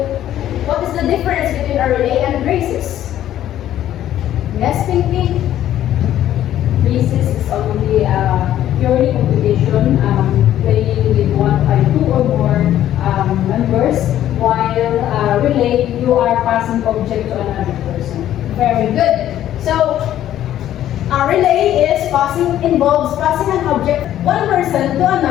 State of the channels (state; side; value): quieter; right; 12.0 dB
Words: what is the difference between a relay and races? Yes, Pinky? Races is only purely competition, playing with two or more members, while relay, you are passing object to another person. Very good. So, a relay involves passing an object one person to